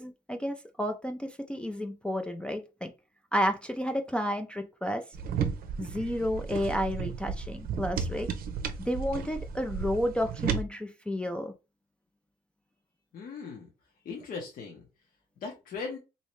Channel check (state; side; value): normal; both; correlation 0.75